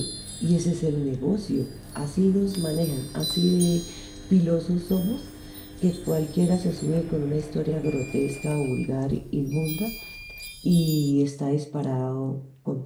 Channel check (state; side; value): identical; both; correlation 1.00